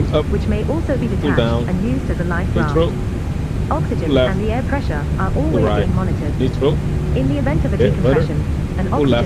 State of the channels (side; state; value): both; identical; correlation 1.00